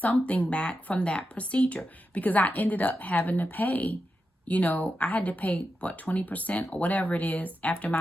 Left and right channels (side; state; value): both; normal; correlation 0.89